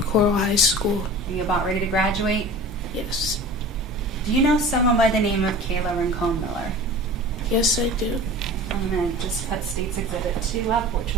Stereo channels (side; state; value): both; normal; correlation 0.38